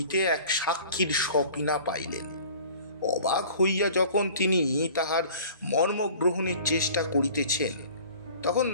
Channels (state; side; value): inverted; both; correlation -0.47